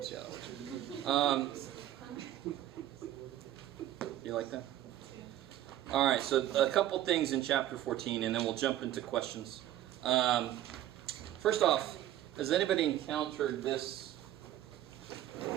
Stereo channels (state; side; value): quieter; left; 12.9 dB